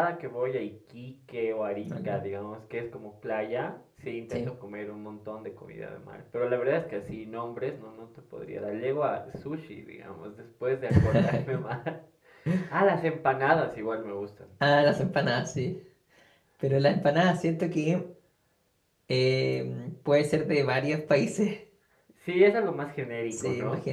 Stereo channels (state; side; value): identical; both; correlation 1.00